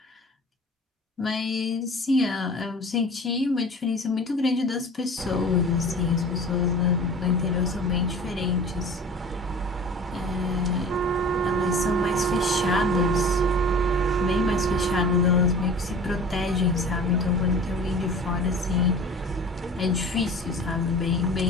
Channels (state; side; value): normal; both; correlation 0.41